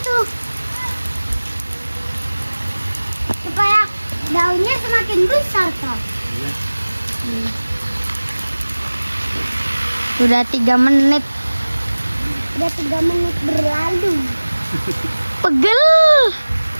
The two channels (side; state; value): both; inverted; correlation -1.00